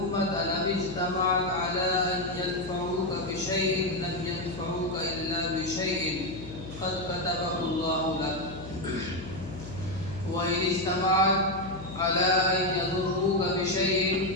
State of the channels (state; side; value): noise; left; hum, 12 dB below the sound